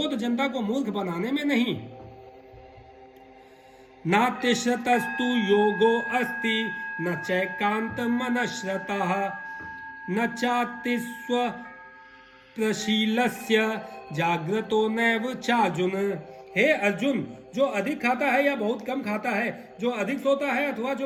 जनता को मूर्ख बनाने में नहीं। नातिश्रतस्तु योगो अस्ति न चैकांत मनश्रतः न चातिस्व प्रशीलस्य जाग्रतो नैव चार्जुन। हे अर्जुन, जो अधिक खाता है या बहुत कम खाता है, जो अधिक सोता है अथवा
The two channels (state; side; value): identical; both; correlation 1.00